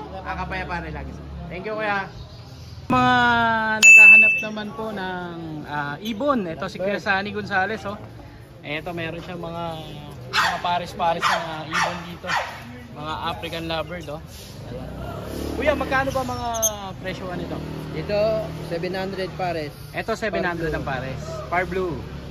Kakapayapaan rin lagi. Thank you Kuya. Mga naghahanap naman po ng ibon. Ito si Kuya Sunny Gonzales, oh. Ito meron siyang mga pares-pares na ibon dito. Mga African lovebird, oh. Ayan. Kuya, magkano ba mga presyo nito? Dito, 700 pares. Ito 700 ang pares. Par blue.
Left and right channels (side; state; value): both; identical; correlation 1.00